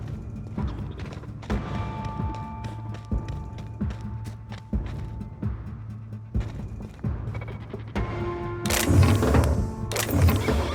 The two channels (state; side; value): identical; both; correlation 1.00